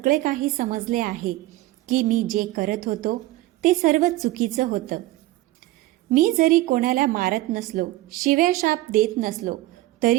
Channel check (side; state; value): left; quieter; 17.3 dB